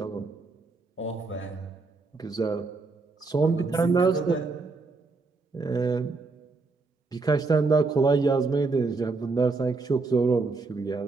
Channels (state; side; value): quieter; left; 3.9 dB